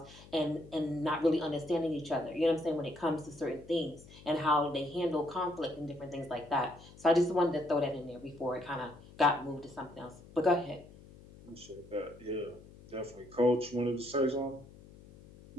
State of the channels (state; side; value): noise; left; hum, 20 dB below the sound